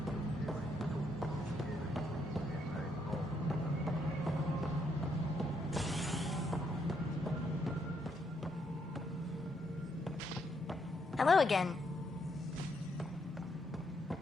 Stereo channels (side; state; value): both; normal; correlation 0.75